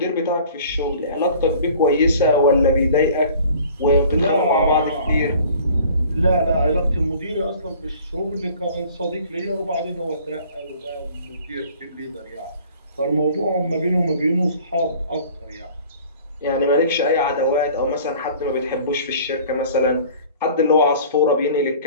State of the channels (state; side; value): inverted; both; correlation -0.49